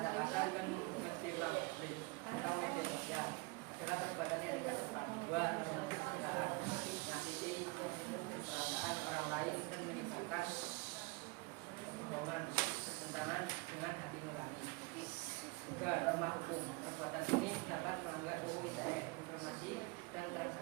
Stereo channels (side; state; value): left; quieter; 27.0 dB